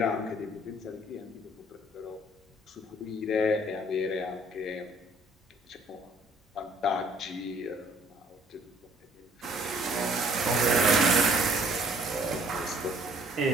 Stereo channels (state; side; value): normal; both; correlation 0.59